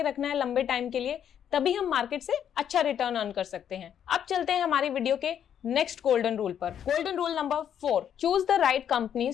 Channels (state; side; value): quieter; right; 9.2 dB